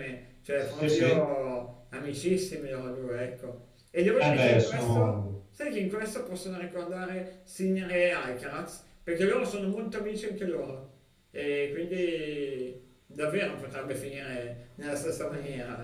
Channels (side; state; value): both; identical; correlation 1.00